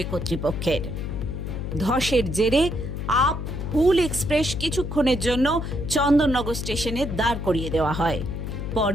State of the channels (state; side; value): noise; left; hum, 5 dB below the sound